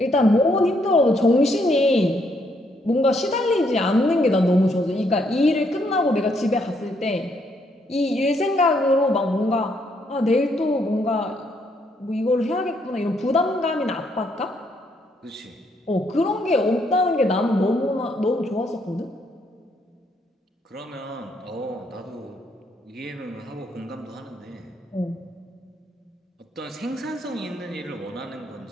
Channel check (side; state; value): both; normal; correlation 0.73